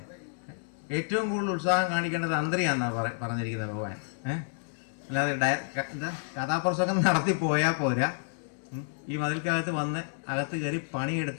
ഏറ്റവും കൂടുതൽ ഉത്സാഹം കാണിക്കേണ്ടത് തന്ത്രിയാന്നാ പറഞ്ഞിരിക്കുന്നത് ഭഗവാൻ. അല്ലാതെ എന്താ കഥാപ്രസംഗം നടത്തി പോയാൽ പോരാ, ഈ മതിൽക്കകത്ത് വന്ന് അകത്ത് കയറി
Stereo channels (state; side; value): silent; right; 58 dB below the other